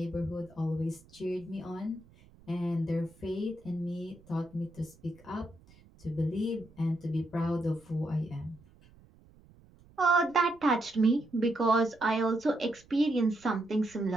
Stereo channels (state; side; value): noise; right; rumble, 26 dB below the sound